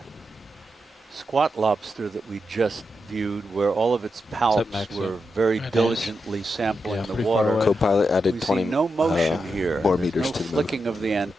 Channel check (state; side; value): normal; both; correlation 0.86